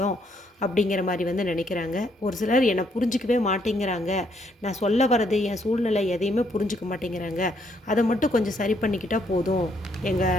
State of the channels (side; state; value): both; normal; correlation 0.71